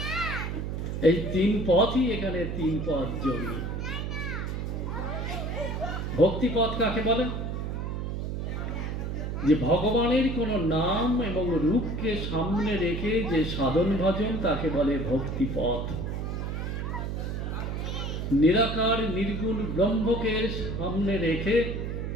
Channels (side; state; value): right; noise; hum, 3 dB below the sound